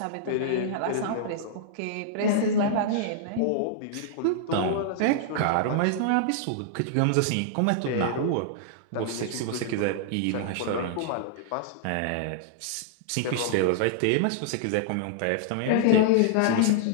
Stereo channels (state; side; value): different; both; correlation -0.01